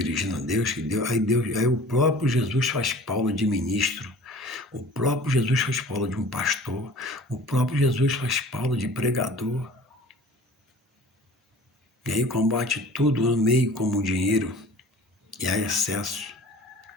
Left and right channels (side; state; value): both; normal; correlation 0.45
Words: a Deus, aí o próprio Jesus faz Paulo de ministro, o próprio Jesus faz Paulo de um pastor, o próprio Jesus faz Paulo de pregador. E aí combate tudo no meio como o dinheiro, e há excesso.